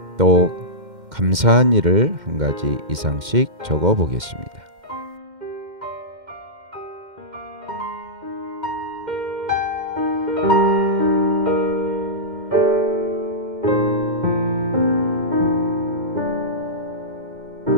또 감사한 일을 한 가지 이상씩 적어보겠습니다.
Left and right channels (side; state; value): left; late; 2.1 ms